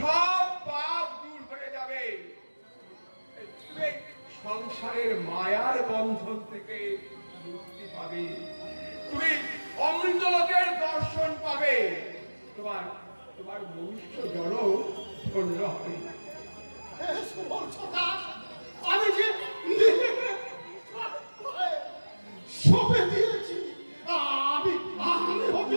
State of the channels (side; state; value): both; inverted; correlation -1.00